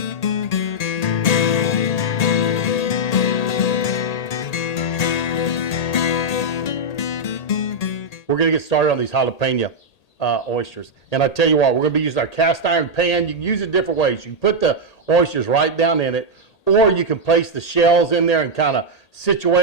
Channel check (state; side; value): late; right; 1.8 ms